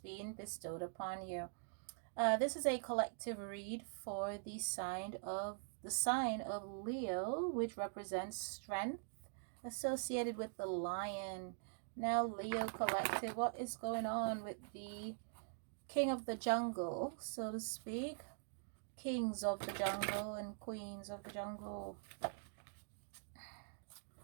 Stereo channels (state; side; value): silent; left; digital silence